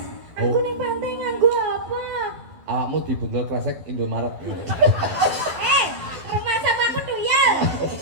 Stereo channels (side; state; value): left; late; 11 ms